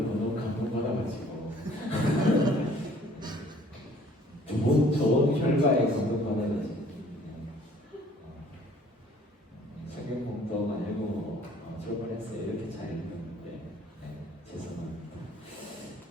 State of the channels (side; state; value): both; normal; correlation 0.56